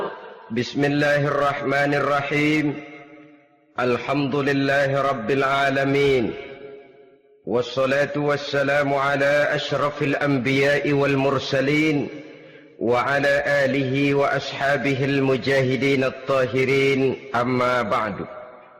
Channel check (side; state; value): both; identical; correlation 1.00